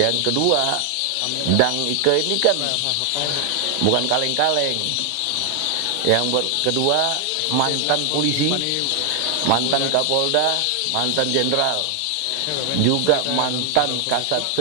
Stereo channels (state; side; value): different; both; correlation 0.00